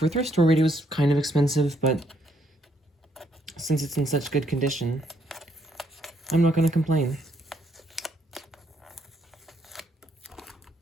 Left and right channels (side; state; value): both; normal; correlation 0.72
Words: a thrift store radio, it was kind of expensive, but since it's in such good condition, I'm not going to complain.